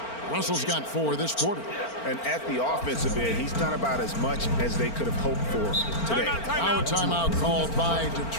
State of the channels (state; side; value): late; right; 4.4 ms